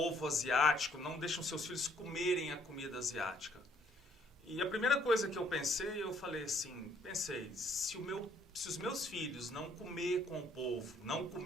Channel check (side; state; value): both; normal; correlation 0.65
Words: asiático, não deixa os seus filhos comerem a comida asiática. E a primeira coisa que eu pensei, eu falei assim, se os meus filhos não comer com o povo, não